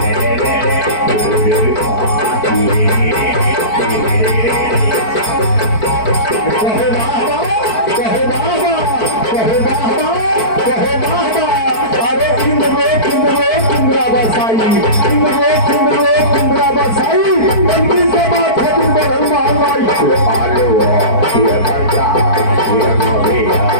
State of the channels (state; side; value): late; right; 4.5 ms